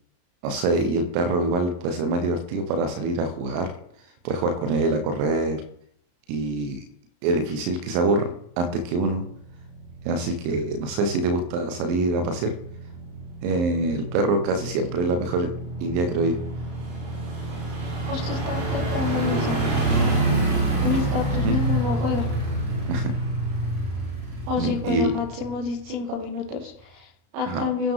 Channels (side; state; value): left; late; 34 ms